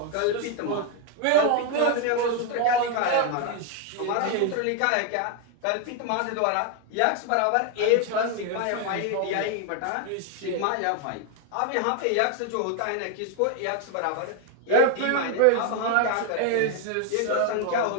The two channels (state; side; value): different; both; correlation 0.01